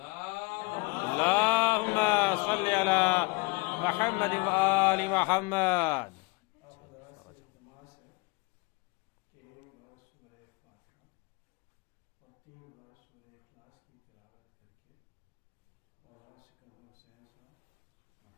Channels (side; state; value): right; quieter; 27.1 dB